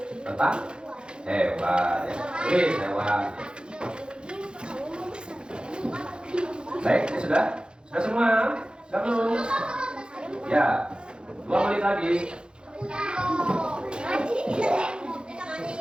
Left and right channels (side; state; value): left; late; 0.051 ms